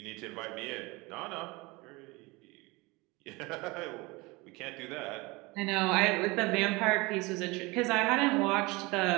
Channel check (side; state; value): left; quieter; 24.1 dB